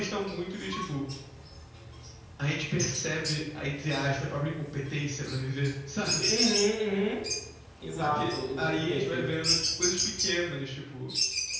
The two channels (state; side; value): identical; both; correlation 1.00